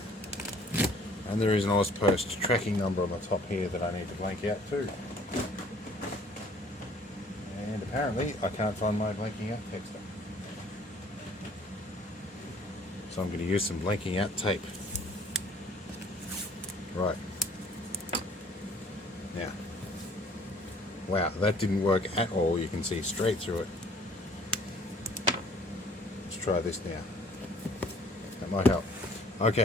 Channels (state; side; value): normal; both; correlation 0.56